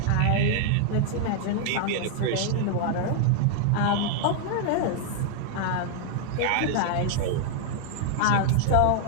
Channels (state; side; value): different; both; correlation 0.00